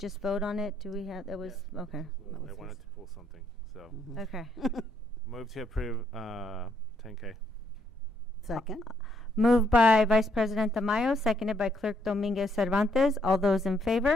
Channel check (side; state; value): both; normal; correlation 0.71